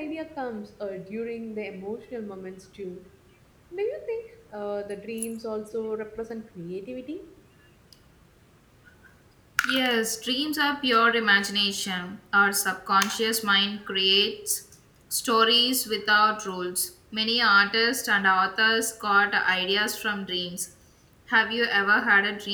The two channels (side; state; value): both; identical; correlation 1.00